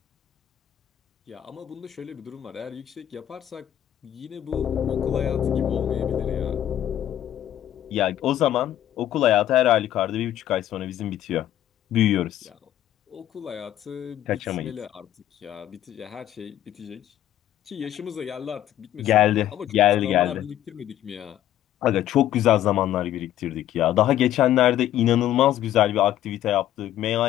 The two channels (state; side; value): quieter; right; 12.1 dB